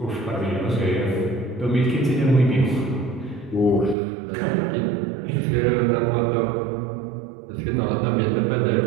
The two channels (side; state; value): left; drops out; at 4.0 s